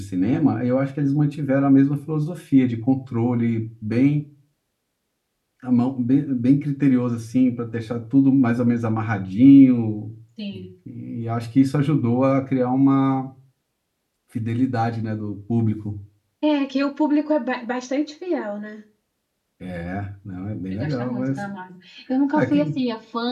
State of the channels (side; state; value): both; identical; correlation 1.00